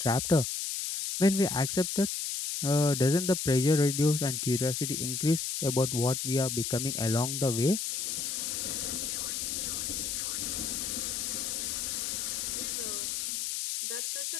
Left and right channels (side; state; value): left; noise; hiss, 2 dB below the sound